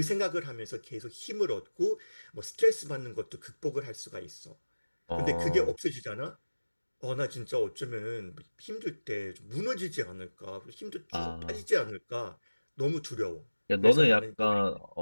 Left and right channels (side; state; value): both; inverted; correlation -1.00